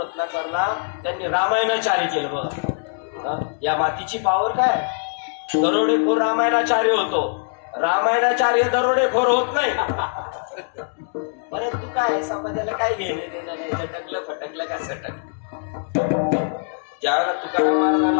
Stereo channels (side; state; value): right; silent; digital silence